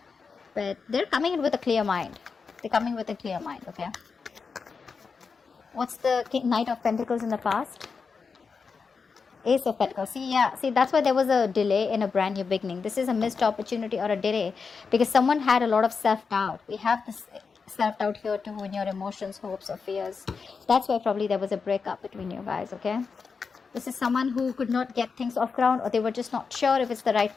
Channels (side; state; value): right; quieter; 5.2 dB